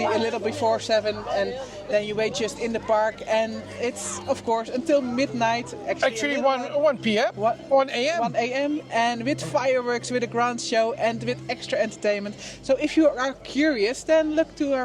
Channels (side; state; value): both; identical; correlation 1.00